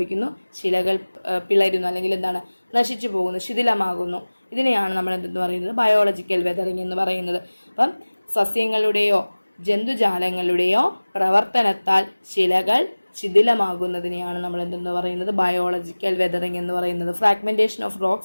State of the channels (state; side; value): inverted; both; correlation -1.00